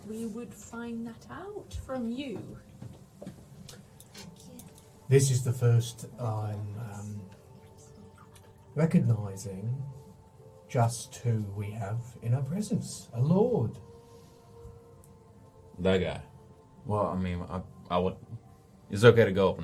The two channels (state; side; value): identical; both; correlation 1.00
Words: we would find that out from you. This is the first I'm recognizing just who we have in our presence. A lord. That guy. Well, I mean, I would. It's okay to go up